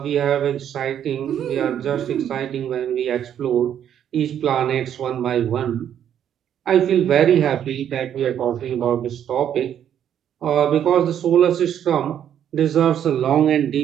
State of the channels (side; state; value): left; quieter; 9.7 dB